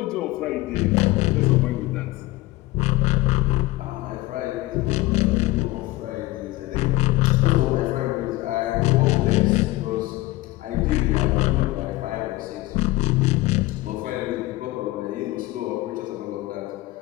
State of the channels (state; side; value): quieter; right; 19.2 dB